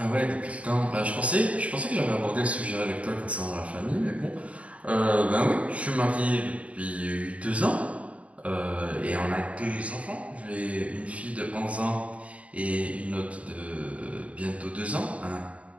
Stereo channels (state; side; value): late; left; 0.065 ms